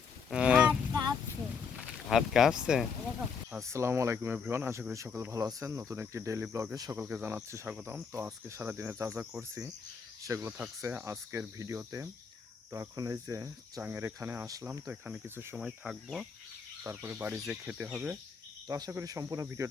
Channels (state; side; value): quieter; right; 5.9 dB